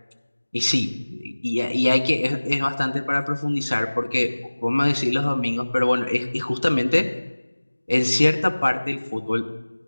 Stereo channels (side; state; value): both; inverted; correlation -1.00